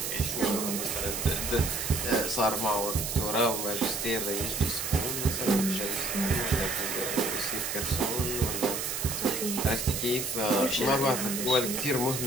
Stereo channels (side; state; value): right; noise; hiss, 3 dB below the sound